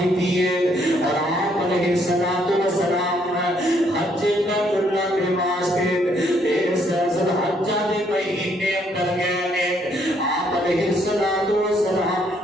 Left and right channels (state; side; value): normal; both; correlation 0.69